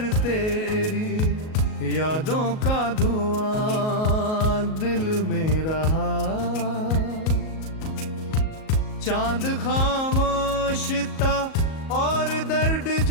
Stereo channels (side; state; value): right; late; 38 ms